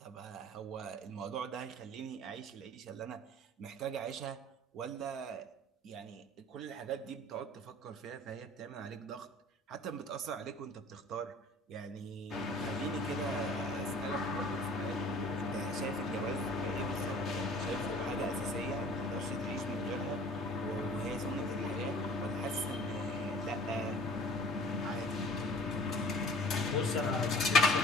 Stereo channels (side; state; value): both; normal; correlation 0.48